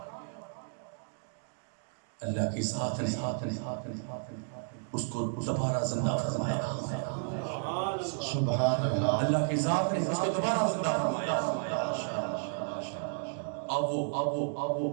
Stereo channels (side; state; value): left; silent; digital silence